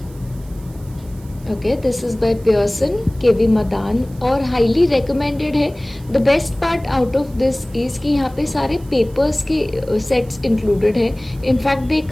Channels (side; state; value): right; noise; hiss, 26 dB below the sound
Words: Okay, this is by Pearson, KV Madan और highly recommended है. The best part out of this is कि यहाँ पे सारे papers के sets included है. In fact, they